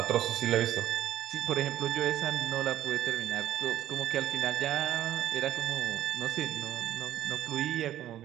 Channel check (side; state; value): left; quieter; 12.6 dB